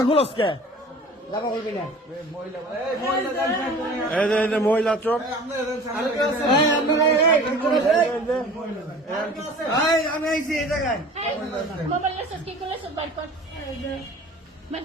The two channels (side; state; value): both; normal; correlation 0.44